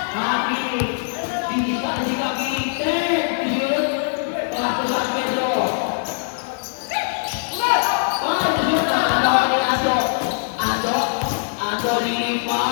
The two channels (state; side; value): silent; right; digital silence